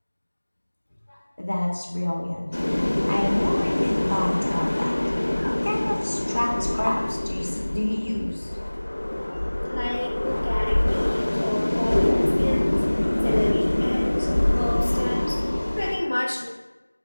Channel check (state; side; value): inverted; both; correlation -1.00